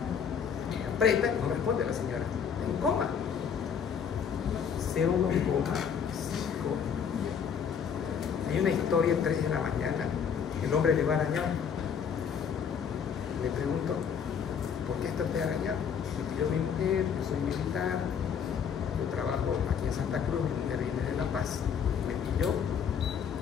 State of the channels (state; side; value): quieter; right; 7.3 dB